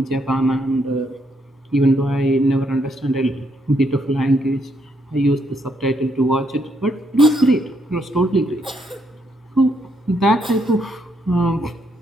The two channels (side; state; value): both; normal; correlation 0.75